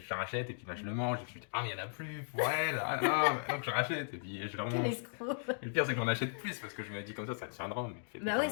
la rachète, et puis là je le mange, et puis je me dis, ah mais il n'y en a plus pour elle, ah non, donc je rachète, et puis je la Quel mange. escroc. Et le pire, c'est que j'en achète plus, parce que je me dis comme ça tiendra, mais Bah ouais,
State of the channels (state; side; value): silent; right; digital silence